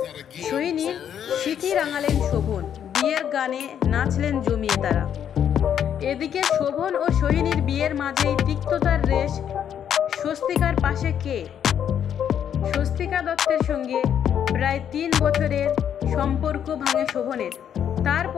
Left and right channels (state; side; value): quieter; right; 9.1 dB